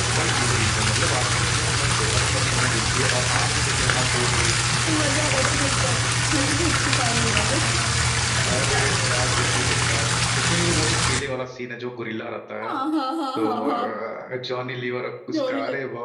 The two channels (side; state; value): both; identical; correlation 1.00